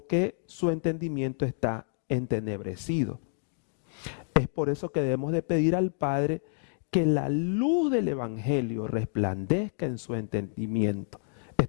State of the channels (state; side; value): silent; right; digital silence